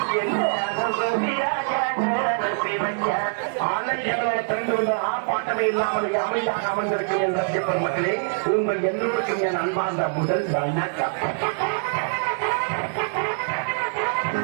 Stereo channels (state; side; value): silent; left; 62 dB below the other